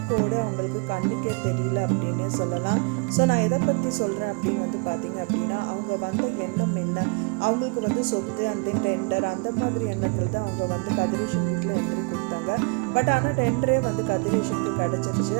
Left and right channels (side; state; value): left; quieter; 30.5 dB